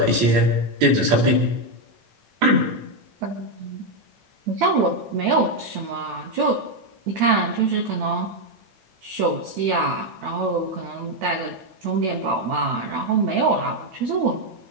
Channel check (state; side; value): late; left; 8.9 ms